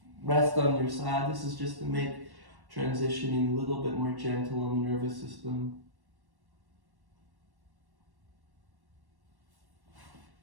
Rest on your side. This is just to make transitioning a little bit more gentle on the nervous system.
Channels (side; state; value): left; late; 1.1 ms